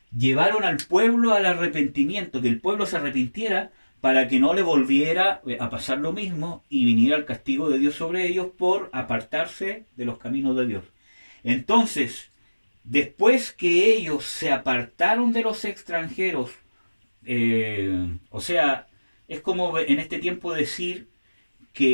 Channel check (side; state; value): both; inverted; correlation -1.00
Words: llevaron al pueblo al arrepentimiento, que el pueblo se arrepintiera para que no le volviera a pasar lo mismo y viniera el castigo de Dios sobre ellos por apartarse de los caminos de Dios. Entonces, después que ellos se apartaron de los extranjeros, o sea, es como en este tiempo decir